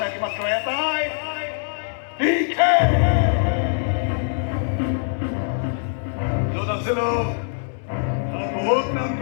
মাত্ৰ এটাই, য'ত আছিলো মই বহুত কাম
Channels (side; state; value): right; silent; 64 dB below the other